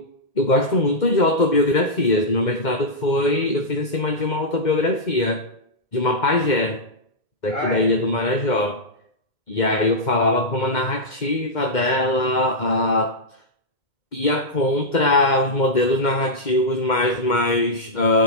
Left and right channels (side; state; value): right; late; 2.1 ms